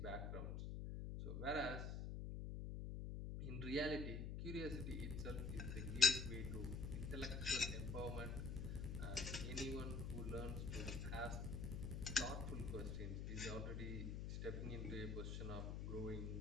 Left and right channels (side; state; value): left; noise; hum, 3 dB below the sound